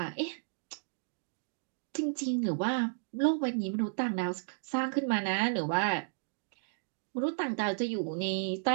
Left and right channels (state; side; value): silent; left; digital silence